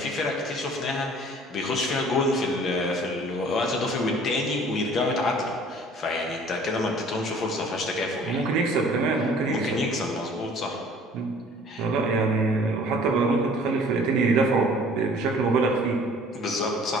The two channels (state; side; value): normal; both; correlation 0.51